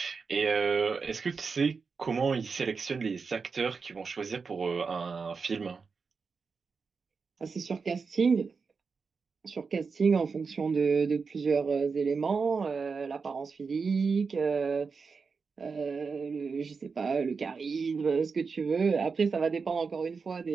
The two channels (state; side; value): quieter; left; 5.0 dB